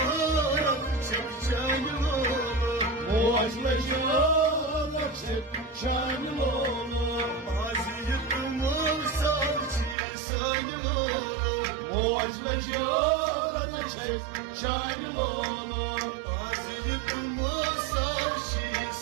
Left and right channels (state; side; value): drops out; left; at 10.0 s